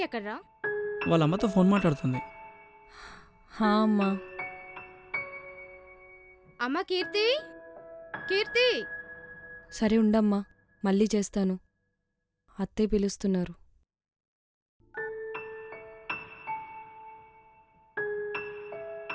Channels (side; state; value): both; identical; correlation 1.00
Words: ఎక్కడ్రా? వాళ్ళ అమ్మతో ఫోన్ మాట్లాడుతుంది. హా అమ్మా. అమ్మ కీర్తి, కీర్తి. సరే ఉండమ్మా, మళ్ళీ చేస్తాను. అత్తయ్య పిలుస్తున్నారు.